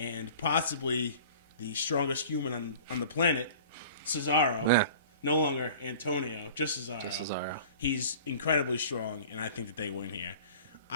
possibly the strongest human on the planet, Cesaro. Yeah. No longer Antonio, just Cesaro. He's incredibly strong, and I think that they win here.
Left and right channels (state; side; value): inverted; both; correlation -0.43